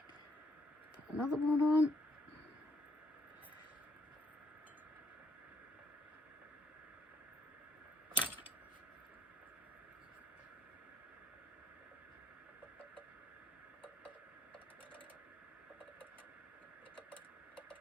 Put another one on.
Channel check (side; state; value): both; normal; correlation 0.71